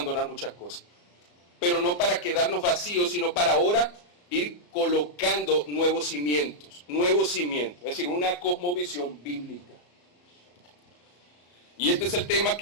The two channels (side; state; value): right; late; 34 ms